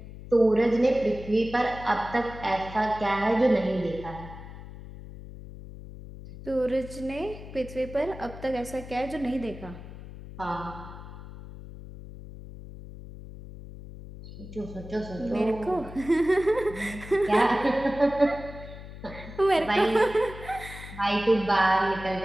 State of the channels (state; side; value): noise; left; hum, 14 dB below the sound